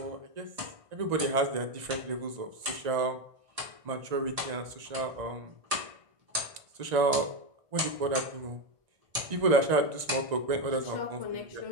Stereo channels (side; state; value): left; late; 1.6 ms